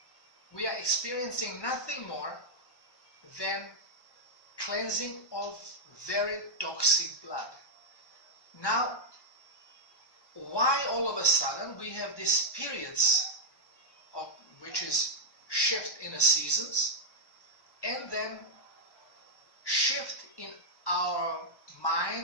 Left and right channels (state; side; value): late; right; 1.2 ms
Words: we are experiencing nothing more than cleansing of very toxic blood. Now, why all of a sudden we have these periods of which is shift in the seasons, and then shift in our